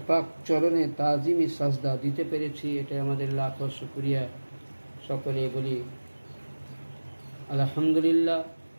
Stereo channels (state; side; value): inverted; both; correlation -1.00